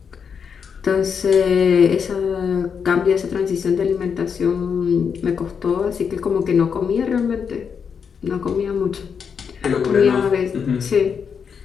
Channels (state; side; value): quieter; right; 6.6 dB